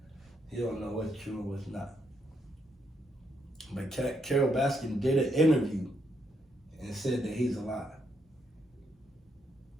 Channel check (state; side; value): normal; both; correlation 0.77